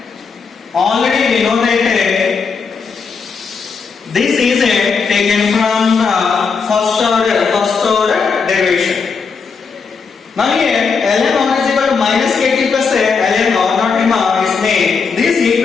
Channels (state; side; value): quieter; right; 5.4 dB